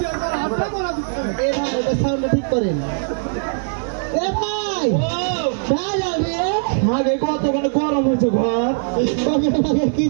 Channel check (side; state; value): left; silent; digital silence